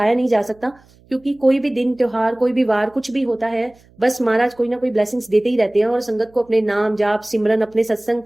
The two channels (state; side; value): noise; right; hum, 29 dB below the sound